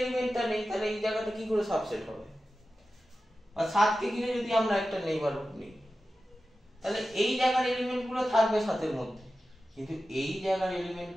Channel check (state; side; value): normal; both; correlation 0.93